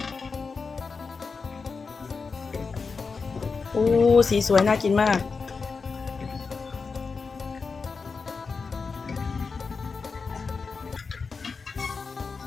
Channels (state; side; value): quieter; right; 4.8 dB